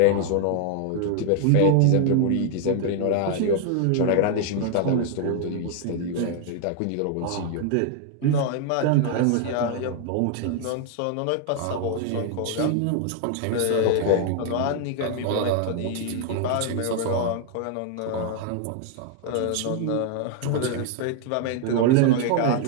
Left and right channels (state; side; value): different; both; correlation 0.00